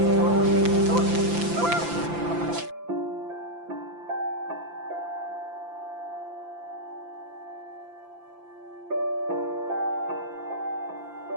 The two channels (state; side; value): late; left; 5.9 ms